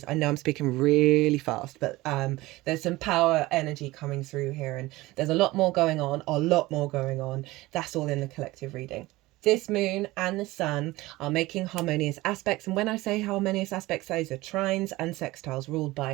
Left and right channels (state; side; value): quieter; left; 19.4 dB